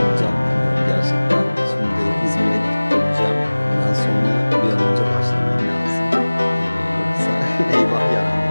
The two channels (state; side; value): inverted; both; correlation -1.00